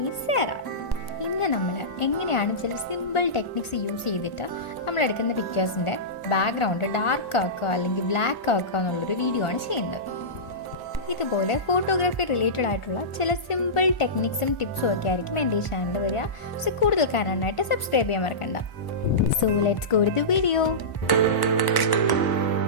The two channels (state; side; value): late; right; 1.5 ms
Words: Sera. ഇന്ന് നമ്മൾ എങ്ങനെയാണ് ചില സിമ്പിൾ ടെക്നിക്സ് യൂസ് ചെയ്തിട്ട് നമ്മളെടുക്കുന്ന പിക്ചേഴ്സിൻ്റെ ബാക്ക്ഗ്രൗണ്ട് ഡാർക്ക് ആക്കുക അല്ലെങ്കിൽ ബ്ലാക്ക് ആക്കുക എന്നുള്ളൊരു വീഡിയോ ആണ് ചെയ്യുന്നത്. ഇതുപോലെ ഫോട്ടോഗ്രാഫി റിലേറ്റഡ് ആയിട്ടുള്ള ചില സിമ്പിൾ ടെക്നിക്സും ടിപ്സും ഒക്കെ ആയിരിക്കും എൻ്റെ ഈ ചാനൽ വരിക. സോ കൂടുതൽ കാണാനായിട്ട് സബ്സ്ക്രൈബ് ചെയ്യാൻ മറക്കണ്ട. So let's go to the video.